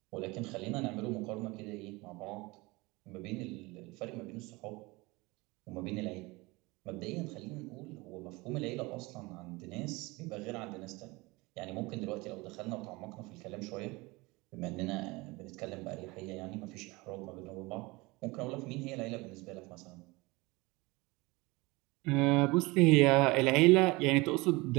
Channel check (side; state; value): left; quieter; 23.6 dB